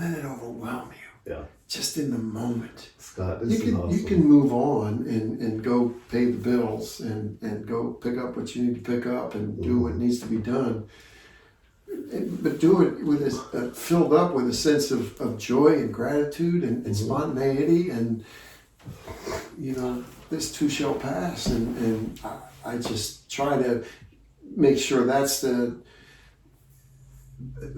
it overwhelm you. Yeah. Just in the moment. Scott, this is awesome. You can move on and go pay the bills and go pick up what you need to pick up and do what needs to be done. But do it with filled up with a sense of joy and gratitude and spontaneity, and this too shall pass, and I just try to make sure that's the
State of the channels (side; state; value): both; identical; correlation 1.00